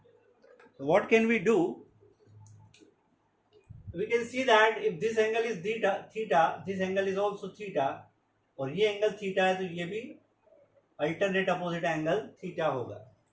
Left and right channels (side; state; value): both; identical; correlation 1.00